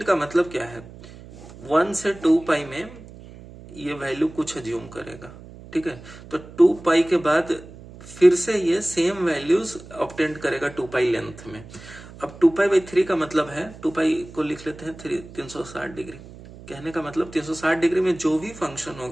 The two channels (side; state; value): right; noise; hum, 17 dB below the sound